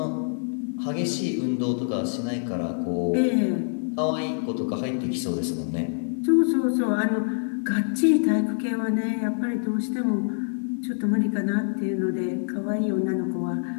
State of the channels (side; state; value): right; silent; digital silence